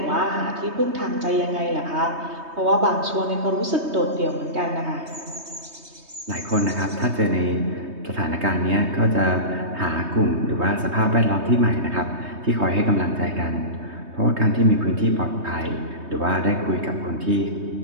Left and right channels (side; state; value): left; late; 3.2 ms